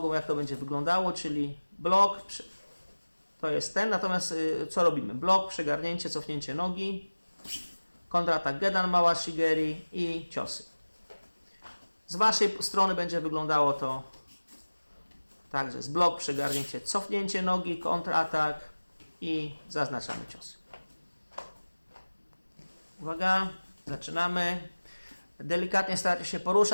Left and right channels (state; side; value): inverted; both; correlation -1.00